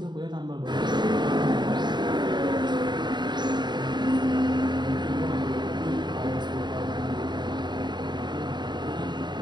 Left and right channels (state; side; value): late; left; 0.21 ms